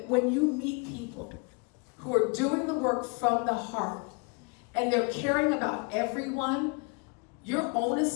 when you meet people who are doing the work from the heart, and they're caring about everyone, your own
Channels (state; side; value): quieter; right; 32.1 dB